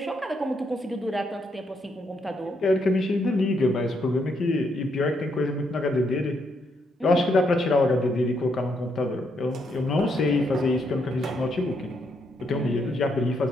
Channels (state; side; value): normal; both; correlation 0.76